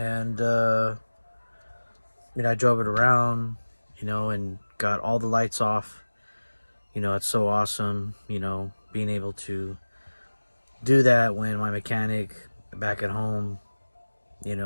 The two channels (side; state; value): both; inverted; correlation -1.00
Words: I drove it around, and got all the lights off. It's so awesome, being able to do that when my mechanic back at home,